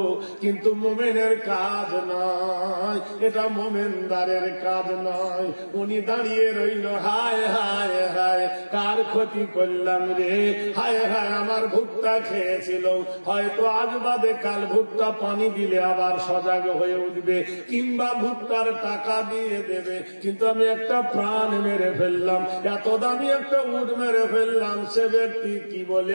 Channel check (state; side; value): inverted; both; correlation -1.00